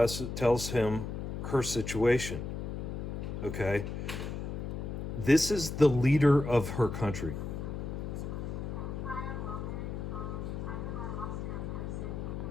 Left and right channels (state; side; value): noise; left; hum, 5 dB below the sound